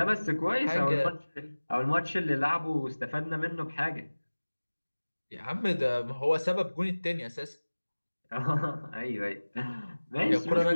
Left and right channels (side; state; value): both; inverted; correlation -1.00